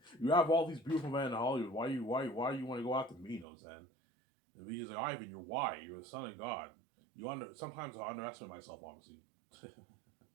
You have all these beautiful men in Hollywood. Why you want to go after me? You know what I'm saying? And we just like, Ivan, you're why? You're the son of God. Sometimes I underestimate myself, obviously.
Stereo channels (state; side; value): drops out; left; at 3.5 s